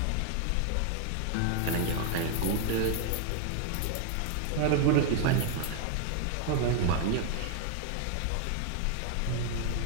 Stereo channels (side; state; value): both; different; correlation 0.00